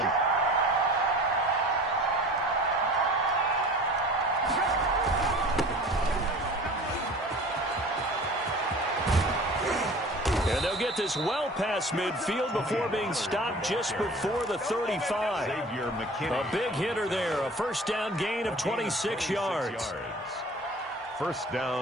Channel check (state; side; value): normal; both; correlation 0.42